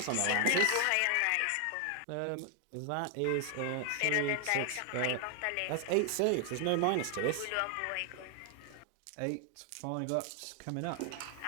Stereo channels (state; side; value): different; both; correlation 0.00